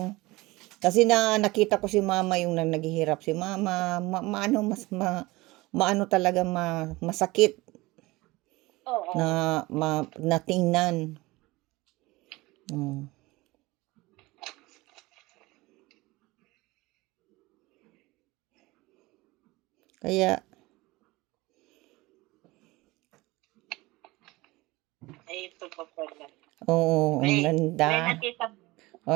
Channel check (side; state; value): left; quieter; 21.2 dB